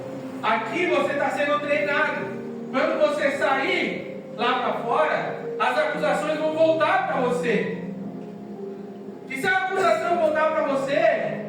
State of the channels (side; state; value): both; identical; correlation 1.00